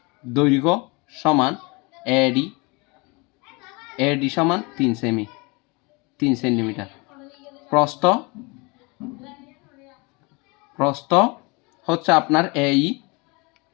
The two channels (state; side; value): quieter; right; 28.1 dB